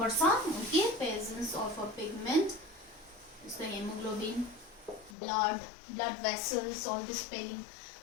Okay, presence of a pigment is the hemoglobin, blood vessels, all this spelling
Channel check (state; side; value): drops out; right; at 5.2 s